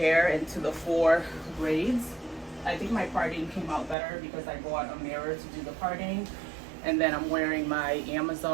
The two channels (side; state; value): left; drops out; at 4.0 s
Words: into the 4 braids. I think my parting came out better because I bought a mirror to do the parting. And then I'm wearing my